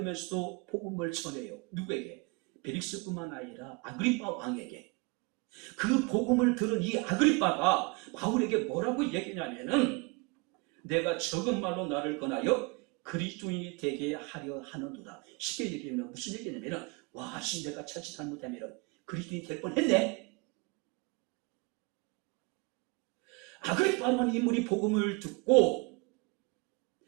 복음을 전해요. 누구에게? 벨릭스뿐만 아니라 아그리빠 왕에게. 그 복음을 들은 이 아그리빠가 바울에게 뭐라고 얘기냐면은 내가 적은 말로 나를 권하여 그리스도인이 되게 하려 하는도다. 쉽게 얘기하면 무슨 얘기냐면 와, 내가 자칫 잘못하면 그리스도인이 될 뻔했네. 아그리빠라는 인물이 복음을 듣고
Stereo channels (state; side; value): quieter; left; 29.1 dB